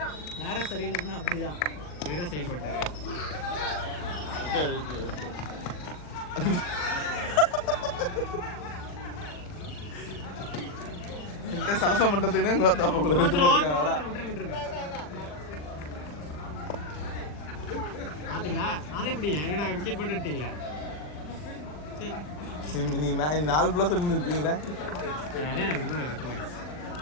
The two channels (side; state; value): right; late; 40 ms